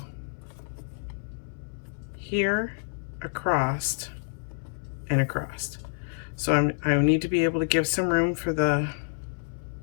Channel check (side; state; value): right; silent; 59 dB below the other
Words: here, across, and across. So I need to be able to give some room for the